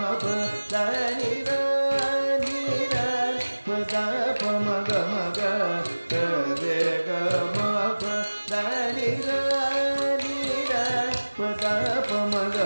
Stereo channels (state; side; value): inverted; both; correlation -1.00